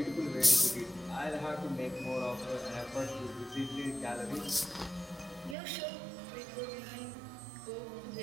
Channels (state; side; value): drops out; left; at 5.6 s